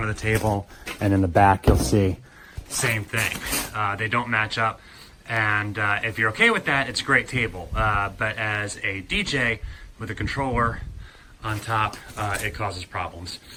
of the table, and in the back you'll see same thing. They don't match up. And if you're okay with that, it's a great table. But as a DJ with a controller on top, it causes problems.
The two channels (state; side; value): identical; both; correlation 1.00